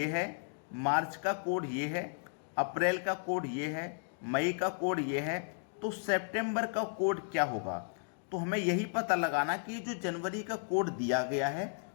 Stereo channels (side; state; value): right; silent; 55 dB below the other